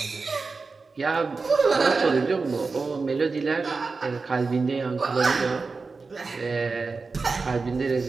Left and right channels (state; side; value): quieter; left; 4.3 dB